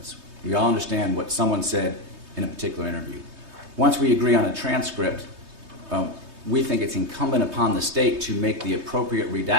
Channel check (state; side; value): late; left; 3.2 ms